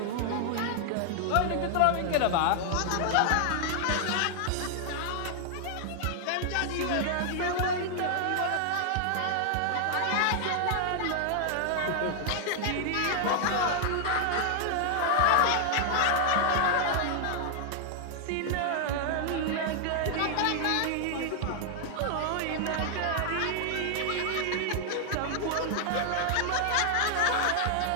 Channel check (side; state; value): both; different; correlation 0.00